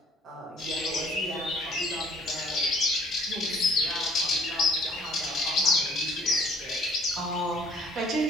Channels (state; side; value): normal; both; correlation 0.59